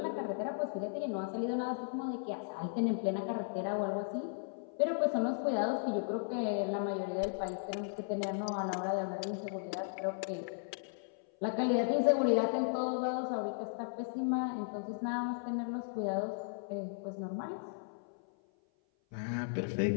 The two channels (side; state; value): right; silent; 54 dB below the other